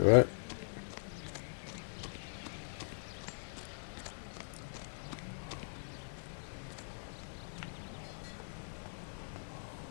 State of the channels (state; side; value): silent; right; 51 dB below the other